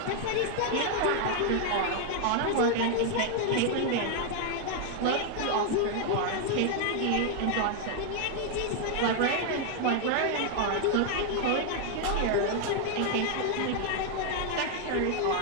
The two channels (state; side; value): different; both; correlation 0.00